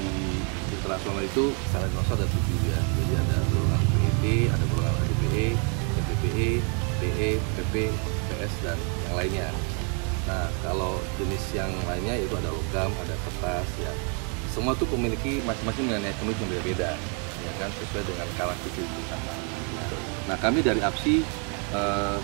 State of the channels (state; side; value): quieter; left; 38.3 dB